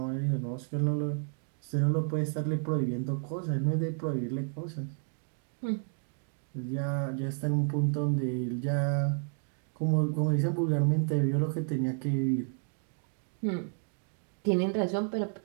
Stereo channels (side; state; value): left; silent; 56 dB below the other